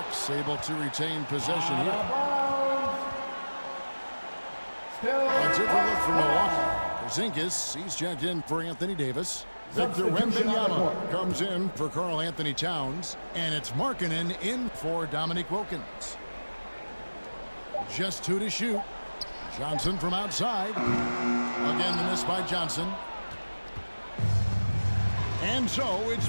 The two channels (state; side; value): inverted; both; correlation -1.00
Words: able to retain possession here. A different look from Milwaukee. Porzingis, he's checked in for Anthony Davis. Victor Wembanyama comes in for Karl Anthony Towns. And it's Markkanen in for Dominique Wilkins. Just 2 to shoot. Johnson from outside. Again, the miss by Johnson. And so it's